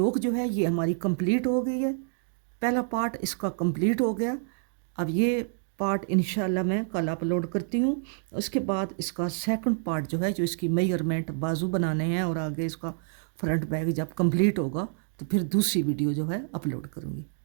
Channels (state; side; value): silent; left; digital silence